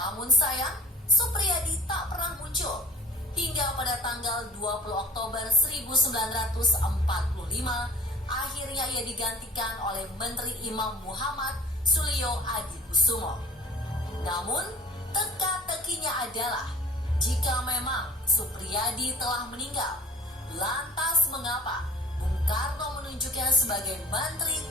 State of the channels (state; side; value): normal; both; correlation 0.45